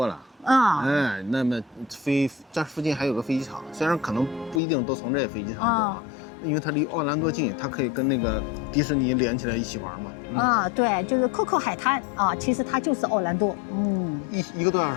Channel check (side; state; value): right; drops out; at 4.6 s